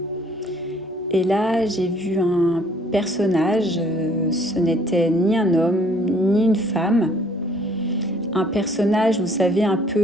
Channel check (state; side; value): normal; both; correlation 0.59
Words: Et là, j'ai vu un personnage, ce n'était ni un homme ni une femme. Un personnage, vous savez, un